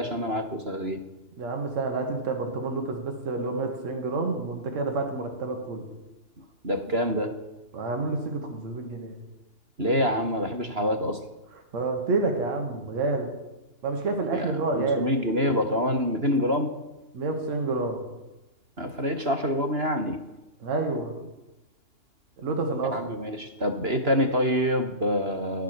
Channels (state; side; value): late; left; 2.9 ms